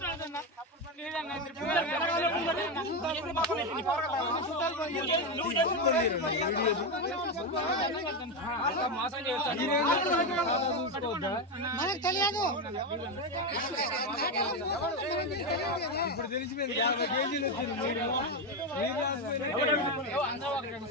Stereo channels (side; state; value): both; normal; correlation 0.10